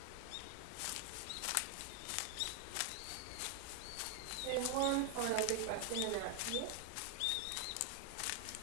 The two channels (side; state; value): both; different; correlation 0.01